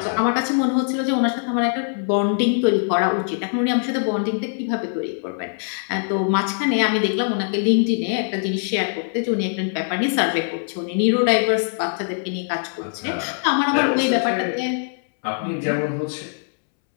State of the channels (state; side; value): silent; right; 64 dB below the other